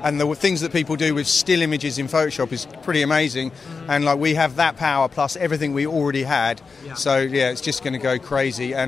and the things that people do with still images in Photoshop is pretty amazing. And like we have that power plus everything we already had. Yeah. So yeah, it's just going to go crazy.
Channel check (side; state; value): right; quieter; 4.8 dB